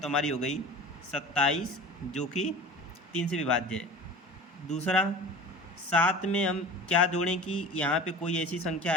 हमारी हो गई 27, जो कि 3 से विभाज्य है। दूसरा, 7 में हम क्या जोड़ें कि यहाँ पे कोई ऐसी संख्या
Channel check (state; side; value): normal; both; correlation 0.37